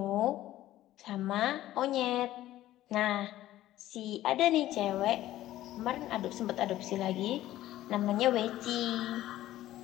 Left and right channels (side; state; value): right; quieter; 14.4 dB